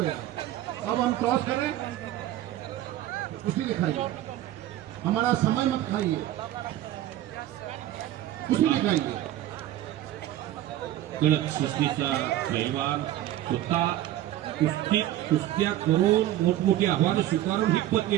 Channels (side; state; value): left; quieter; 13.5 dB